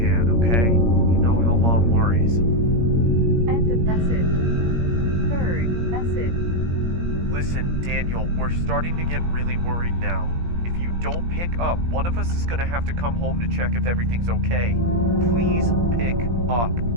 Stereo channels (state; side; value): late; left; 17 ms